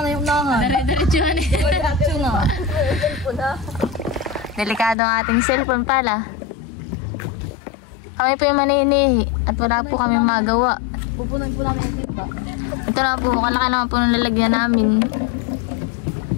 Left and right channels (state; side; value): drops out; right; at 5.0 s